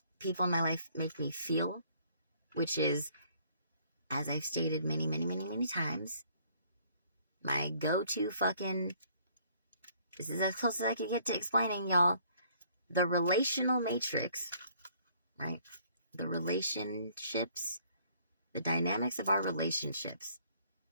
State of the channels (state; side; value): inverted; both; correlation -0.61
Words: people in my life make me feel, which is, as I've stated many times, my go-to fucking, this is as close as I could get to explaining, y'all, the relational matrix, right? The relationships, the dynamics of our relationships